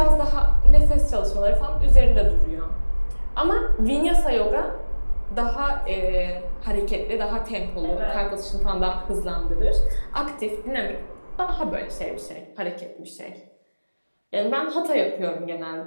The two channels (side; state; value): both; inverted; correlation -1.00